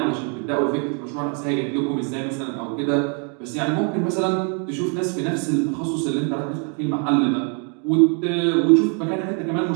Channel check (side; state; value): left; quieter; 39.3 dB